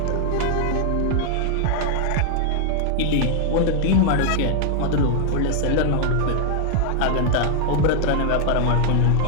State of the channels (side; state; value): both; different; correlation 0.00